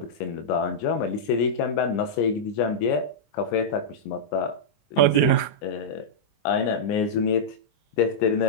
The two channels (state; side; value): late; right; 20 ms